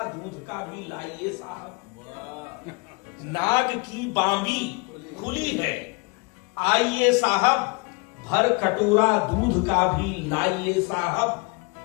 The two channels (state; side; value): quieter; right; 28.5 dB